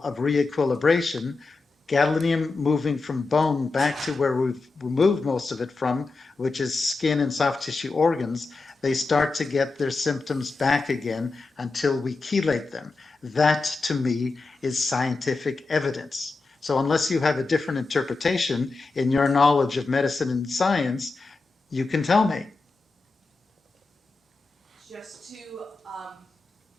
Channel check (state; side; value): quieter; right; 3.8 dB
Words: of re-equilibration, gadolinium moving from bone back to where we've removed most of it from, which is skin and soft tissue organs, they start to get their symptoms back again until we chelate them. That, to me, is scientific evidence. So unless you have a different interpretation in your knowledge of medicine and science, you can tell me. Just to